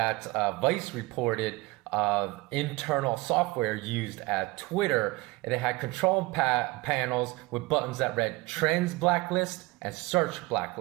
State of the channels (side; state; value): left; quieter; 22.2 dB